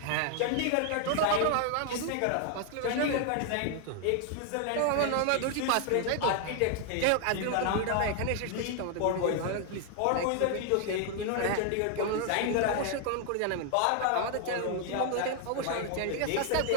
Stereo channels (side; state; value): both; different; correlation 0.00